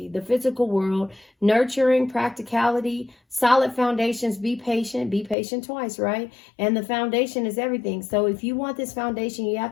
the physical world, nurturing, practicality, solid foundations. Be patient twice, right? And the foundation is everything. So if you want this foundation, you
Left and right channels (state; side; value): drops out; right; at 5.4 s